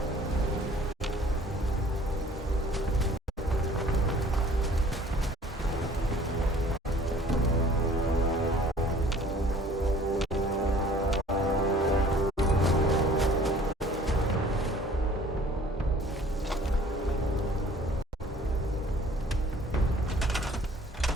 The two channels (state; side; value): normal; both; correlation 0.52